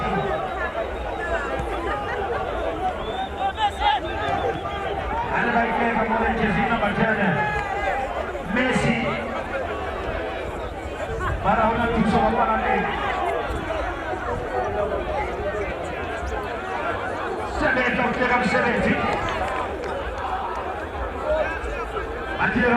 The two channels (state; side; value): identical; both; correlation 1.00